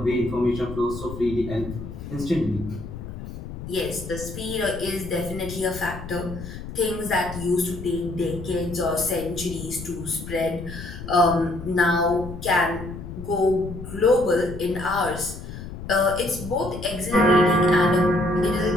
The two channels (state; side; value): noise; left; rumble, 10 dB below the sound